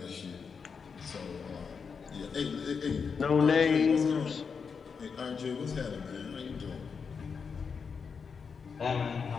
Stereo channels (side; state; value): right; quieter; 5.8 dB